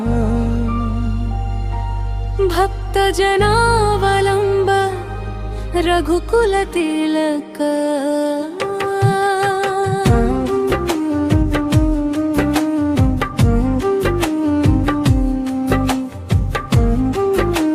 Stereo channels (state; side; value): identical; both; correlation 1.00